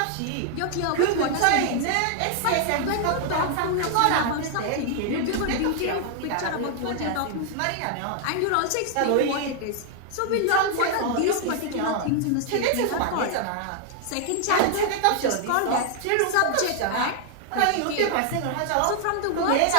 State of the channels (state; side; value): different; both; correlation 0.00